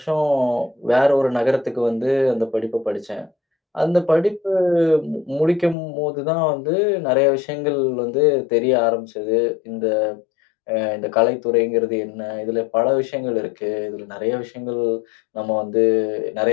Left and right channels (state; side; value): drops out; right; at 5.8 s